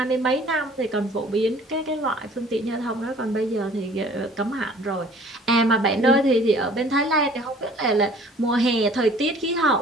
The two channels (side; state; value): both; normal; correlation 0.52